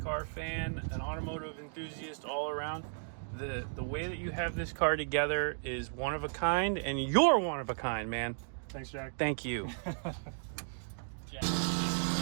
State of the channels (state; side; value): silent; left; digital silence